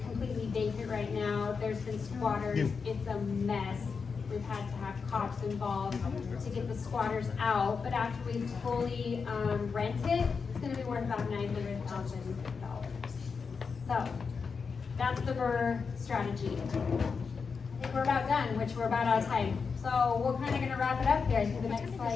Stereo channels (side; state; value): right; quieter; 5.4 dB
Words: completely vacant right now. There's been squatters. It's a mess. We've had to have cops involved to get the squatters out, but after we fully rent it, it's going to be worth about $900,000. So that's the BRRRR strategy. I think we're about done, which we're about out of time. So we're kind of going to wrap it up here. I think the next